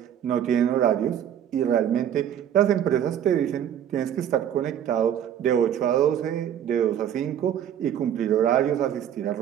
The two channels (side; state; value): left; quieter; 9.7 dB